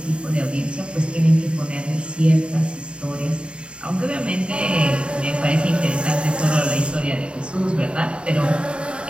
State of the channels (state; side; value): late; left; 0.054 ms